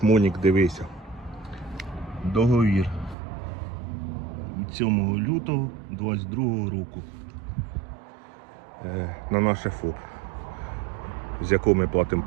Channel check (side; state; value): left; drops out; at 3.2 s